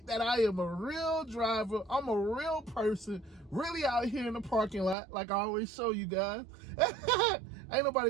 that I am a real driver, I'm a real person, really out here in the parking lot, like I always show you guys. Ain't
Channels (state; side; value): drops out; left; at 5.0 s